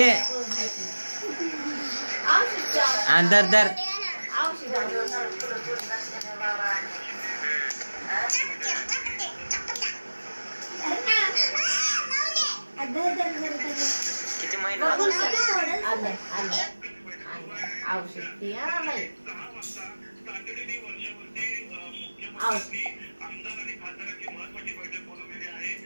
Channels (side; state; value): both; inverted; correlation -1.00